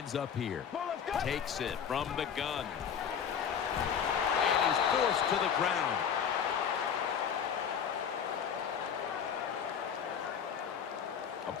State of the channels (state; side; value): quieter; right; 7.7 dB